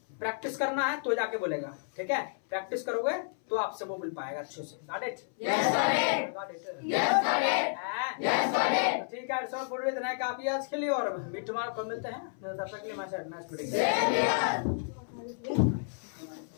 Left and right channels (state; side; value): silent; right; 57 dB below the other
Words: प्रैक्टिस करना है तो जाके बोलेगा, ठीक है। प्रैक्टिस करोगे तो आपसे वो मिल पाएगा अच्छे से। Got it? Yes, got it. Yes, got it. ठीक है, सो पूरी इतना काफी आज के लिए, और भी तुम्हारे को मिलते हैं, तब तक के लिए मैं